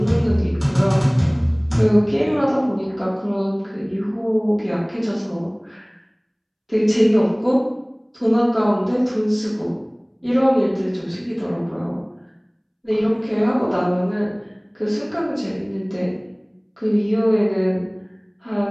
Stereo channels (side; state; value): both; identical; correlation 1.00